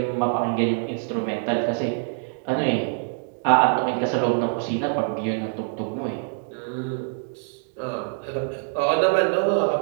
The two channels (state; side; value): silent; left; digital silence